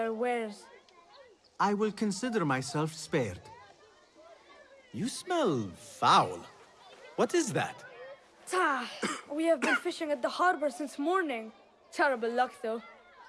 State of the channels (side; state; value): both; identical; correlation 1.00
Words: wares. I will consider myself spared. You smell foul. What is that? We have been fishing at the harbor since morning. Terrible luck, though.